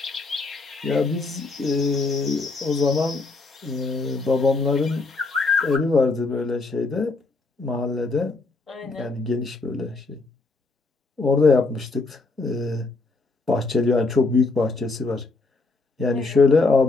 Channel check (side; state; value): right; quieter; 3.7 dB